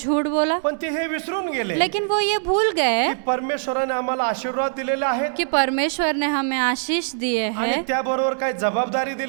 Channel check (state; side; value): silent; left; 62 dB below the other